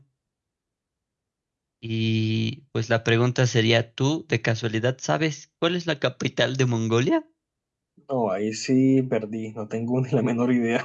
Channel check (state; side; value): identical; both; correlation 1.00